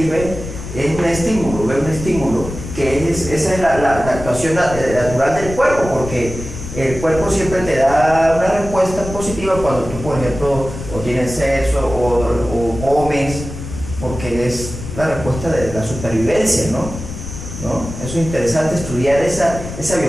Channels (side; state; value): left; noise; rumble, 10 dB below the sound